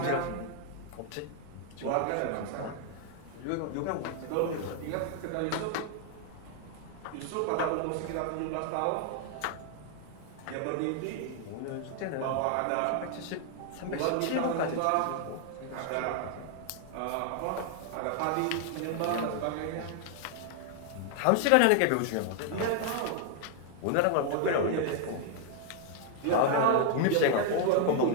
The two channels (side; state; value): both; different; correlation 0.00